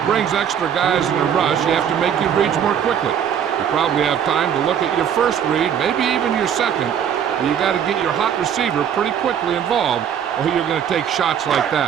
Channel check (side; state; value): left; quieter; 8.6 dB